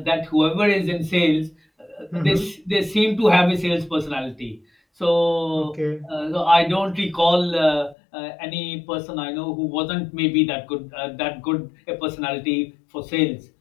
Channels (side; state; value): right; drops out; at 8.0 s